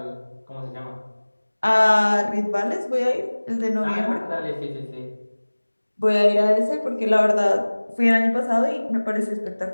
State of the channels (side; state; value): both; inverted; correlation -1.00